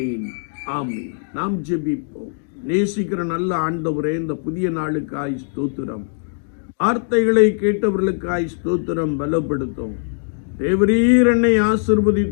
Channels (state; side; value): silent; right; digital silence